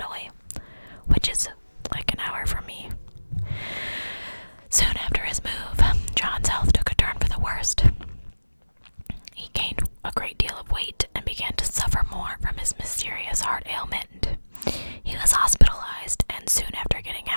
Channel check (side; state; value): both; inverted; correlation -1.00